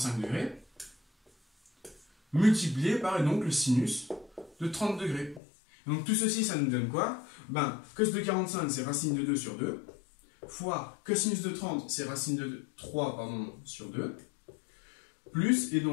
degrés multiplié par donc le sinus de 30 degrés. Donc tout ceci, ça nous donne quoi? Ben, cos de 45, c'est racine de 2 sur 2, fois cosinus de 30, c'est racine de 3 pardon, sur 2, plus, et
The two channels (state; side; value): drops out; right; at 5.4 s